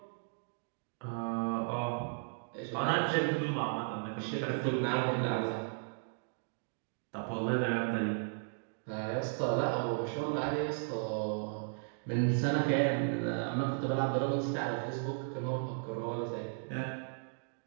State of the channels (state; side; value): silent; left; digital silence